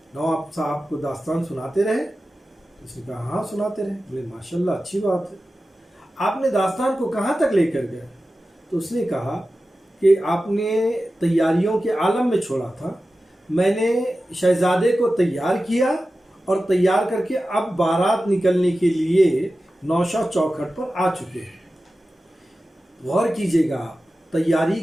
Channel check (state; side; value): normal; both; correlation 0.94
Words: نواب صاحب کو داستان سناتے رہے؟ اس نے کہا ہاں سناتے رہے۔ بولے ماشاءاللہ اچھی بات ہے، آپ نے داستان کو کہاں تک لے کر گئے؟ تو اس نے کہا کہ آپ نے تیاریوں کے عالم میں چھوڑا تھا، میں نے شہزادے کو تیار کیا اور تیار کر کے اب بارات نکلنے کے لیے نوشہ چوکھٹ پر آ چکے ہیں۔ غور کیجئے گا تیاری